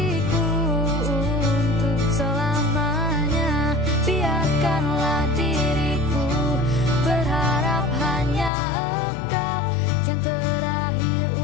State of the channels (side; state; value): right; drops out; at 8.5 s